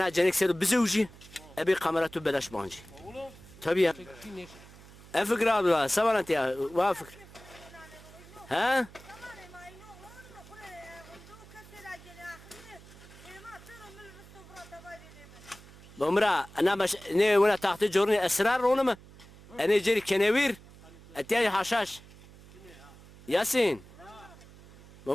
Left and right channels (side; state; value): right; noise; hum, 21 dB below the sound